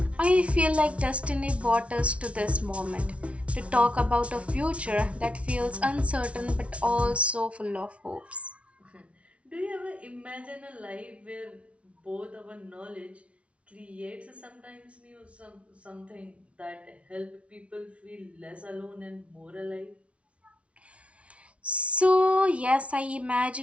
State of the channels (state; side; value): late; left; 0.062 ms